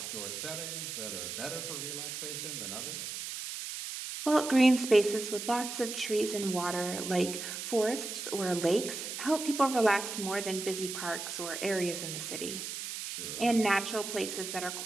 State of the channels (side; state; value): right; noise; hiss, 6 dB below the sound